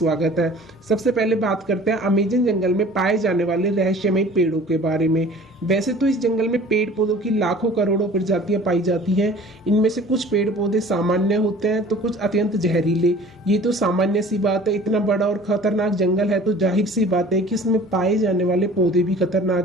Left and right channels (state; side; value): normal; both; correlation 0.46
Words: है। सबसे पहले बात करते हैं अमेज़न जंगल में पाए जाने वाले रहस्यमयी पेड़ों के बारे में। वैसे तो इस जंगल में पेड़ पौधों की लाखों करोड़ों प्रजातियां पाई जाती हैं। इनमें से कुछ पेड़ पौधे सामान्य होते हैं तो कुछ अत्यंत जहरीले। ये तो सामान्य सी बात है, इतना बड़ा और खतरनाक जंगल है तो जाहिर सी बात है कि इसमें पाए जाने वाले पौधे भी